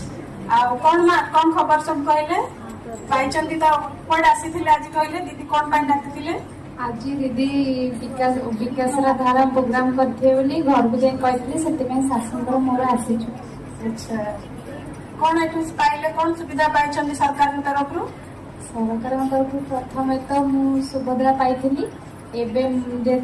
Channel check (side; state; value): both; identical; correlation 1.00